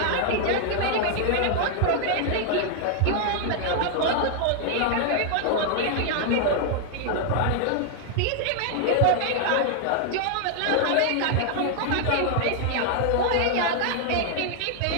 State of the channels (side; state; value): both; different; correlation 0.00